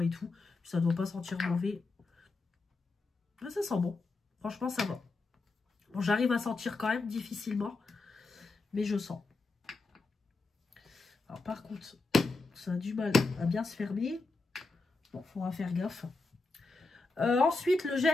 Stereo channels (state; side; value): quieter; right; 3.6 dB